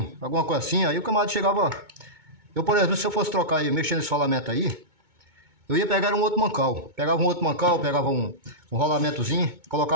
alguma coisa assim, aí o camarada chegava... Eu, por exemplo, se eu fosse trocar e mexer nesse rolamento aí, eu ia pegar um outro mancal. Pegava um outro mancal, pegava um rolamentozinho,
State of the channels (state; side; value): late; left; 2.2 ms